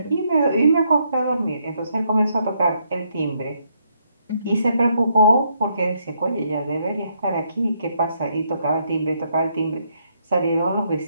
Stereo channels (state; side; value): inverted; both; correlation -0.75